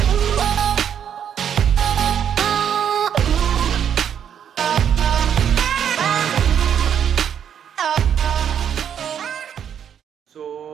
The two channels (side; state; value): left; quieter; 8.7 dB